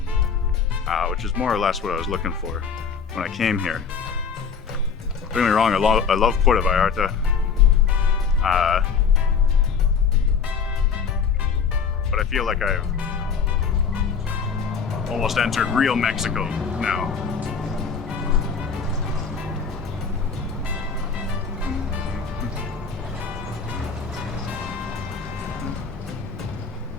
which is more or less what I was looking for when I came here. Don't get me wrong, I love Puerto Vallarta. But I feel like I've almost entered real Mexico now.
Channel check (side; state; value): right; quieter; 6.1 dB